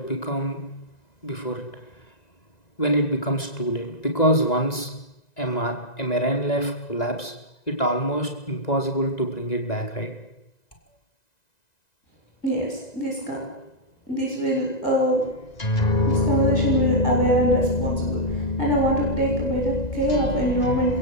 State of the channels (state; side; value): late; right; 1.9 ms